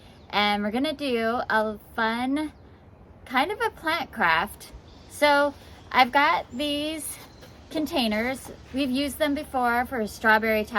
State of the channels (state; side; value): identical; both; correlation 1.00